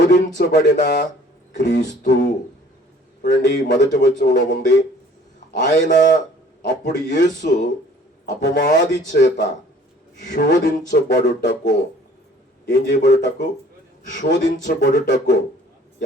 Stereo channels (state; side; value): normal; both; correlation 0.54